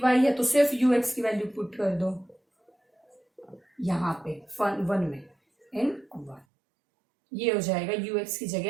है, तो सिर्फ यू एक्स की वैल्यू पुट कर दो यहाँ पे 1 में इन 1, ये हो जाएगा यू एक्स की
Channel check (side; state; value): left; drops out; at 6.5 s